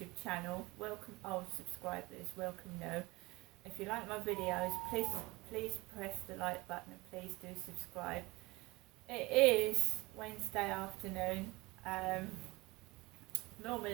channel. Welcome old subscribers, welcome new. If you like my videos, please press the like button and please do subscribe. It is Wednesday afternoon.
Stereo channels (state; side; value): quieter; left; 22.0 dB